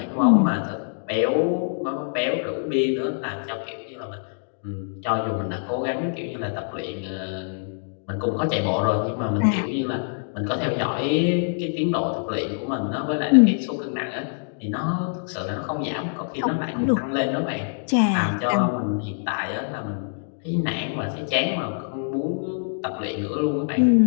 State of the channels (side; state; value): right; silent; digital silence